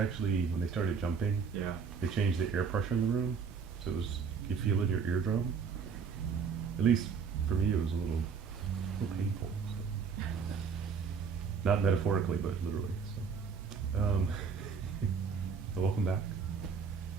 when they started jumping. Yeah. They changed the air pressure in the room, so it was you feel it in your eardrum. At least for me, it was a little painful. So. Not metaphorically, but literally. So, welcome back.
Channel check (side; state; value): left; quieter; 5.9 dB